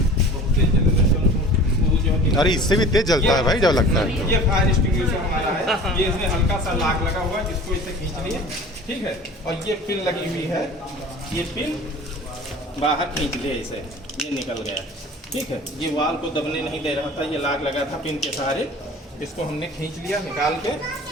अरे इससे भी तेज जलता है भाई जब लगता है। ये फायर एक्सटिंग्विशर हमारा है, ये इसमें हल्का सा लाक लगा हुआ है जिसको इसे खींच लिए, ठीक है। और ये पिन लगी हुई है, ये पिन बाहर खींच लिया इसे, ये निकल गया, ठीक है। ये वाल को दबने नहीं दे रहा था, ये लाग लगा था पिन के सहारे, इसको हमने खींच लिया निकाल के,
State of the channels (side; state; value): both; normal; correlation 0.42